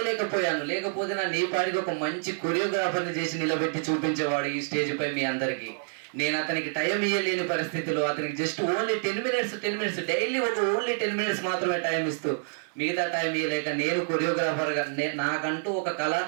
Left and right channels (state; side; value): silent; left; 60 dB below the other